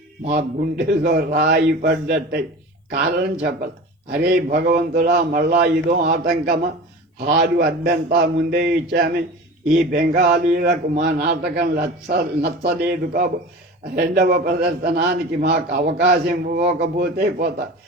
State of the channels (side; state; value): both; normal; correlation 0.35